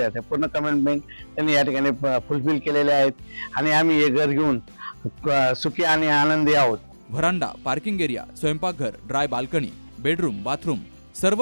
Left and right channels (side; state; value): both; inverted; correlation -1.00